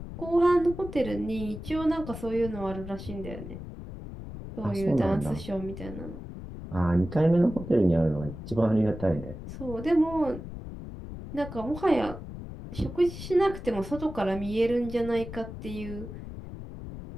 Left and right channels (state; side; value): noise; left; rumble, 11 dB below the sound